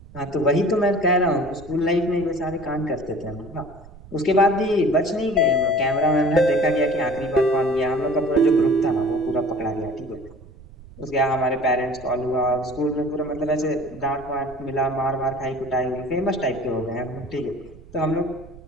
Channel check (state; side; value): noise; right; rumble, 20 dB below the sound